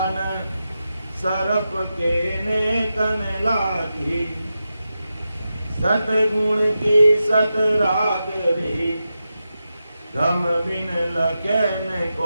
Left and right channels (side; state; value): both; inverted; correlation -0.90